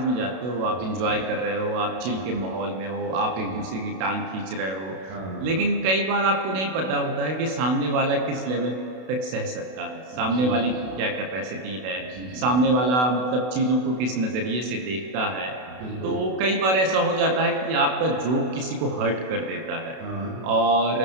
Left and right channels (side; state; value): left; late; 32 ms